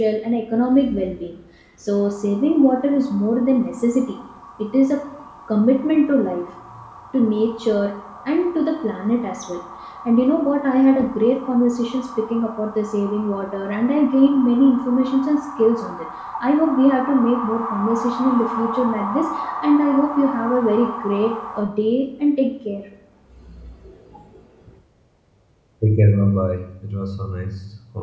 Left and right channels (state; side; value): identical; both; correlation 1.00